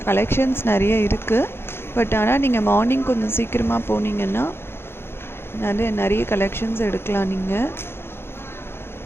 கலெக்ஷன்ஸ் நிறைய இருக்குது. பட் ஆனால் நீங்கள் மார்னிங் கொஞ்சம் சீக்கிரமாக போனீங்கன்னா நிறைய கலெக்ஷன்ஸ் எடுக்கலாம். நீங்கள்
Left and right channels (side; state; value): right; late; 0.11 ms